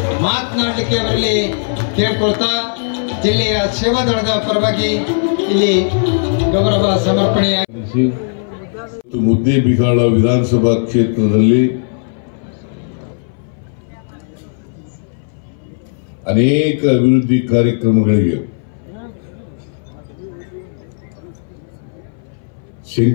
ಮಾತನಾಡಲಿಕ್ಕೆ ಅವರಲ್ಲಿ ಕೇಳ್ಕೊಳ್ತಾ ಜಿಲ್ಲೆಯ ಸೇವಾದಳದ ಪರವಾಗಿ ಇಲ್ಲಿ ಗೌರವ ಸಮರ್ಪಣೆಯಾಗಿ ಮುದ್ದೇಬಿಹಾಳ ವಿಧಾನಸಭಾ ಕ್ಷೇತ್ರದಲ್ಲಿ ಅನೇಕ ಅಭಿವೃದ್ಧಿ ಕಾರ್ಯಕ್ರಮಗಳಿಗೆ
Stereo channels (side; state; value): right; silent; 62 dB below the other